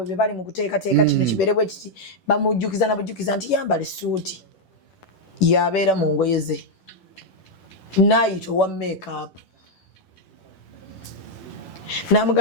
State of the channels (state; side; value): late; right; 10 ms